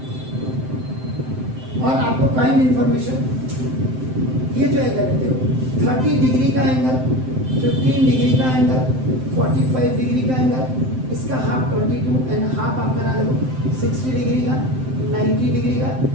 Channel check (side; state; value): left; late; 7.7 ms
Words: और आपको काइंड इंफॉर्मेशन, ये जो एंगल है देखो, 30 डिग्री का एंगल, 15 डिग्री का एंगल, 45 डिग्री का एंगल, इसका हाफ 22 एंड हाफ आप बना दो 60 डिग्री का, 90 डिग्री का,